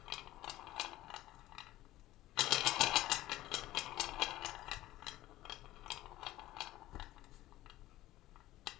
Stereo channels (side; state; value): right; quieter; 15.7 dB